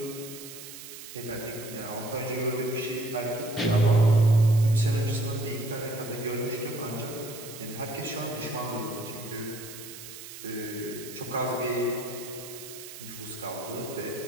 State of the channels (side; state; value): right; noise; hiss, 13 dB below the sound